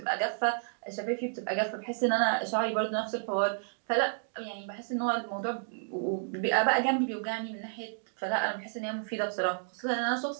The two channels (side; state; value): left; silent; digital silence